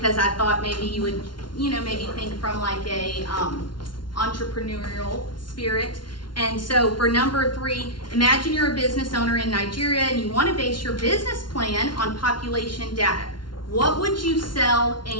I thought maybe you would maybe think from like a entrepreneurial spirit. And so for number 3, imagine you're a business owner in Nigeria and you want to base your business plan on population data. What would you sell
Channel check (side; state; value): right; late; 0.71 ms